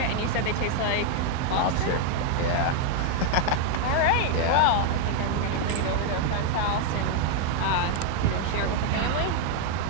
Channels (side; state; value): both; different; correlation 0.00